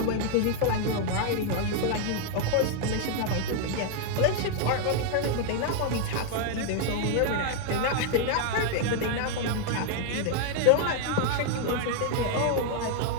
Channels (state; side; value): different; both; correlation 0.00